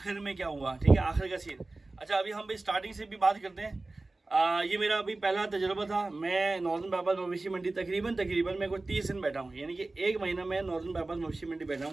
में क्या हुआ, ठीक है, आखिर का सीन। अच्छा, अभी हम भाई स्टार्टिंग से भी बात करते हैं। ये मेरा अभी पहला तजुर्बा था। मैं नॉर्दर्न बाईपास मवेशी मंडी तकरीबन मैं कुछ 30 दिन बैठा हूँ, यानी कि एक महीना मैं नॉर्दर्न बाईपास मवेशी मंडी बैठा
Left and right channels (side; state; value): left; quieter; 3.2 dB